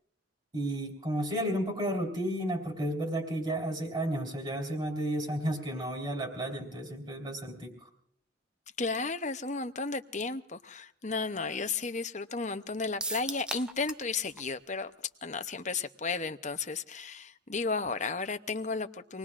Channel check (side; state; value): both; normal; correlation 0.34